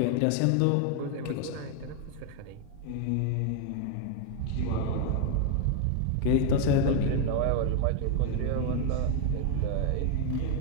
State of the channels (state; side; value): different; both; correlation 0.01